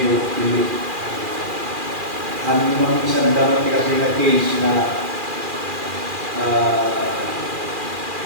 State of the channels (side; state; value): left; late; 2.4 ms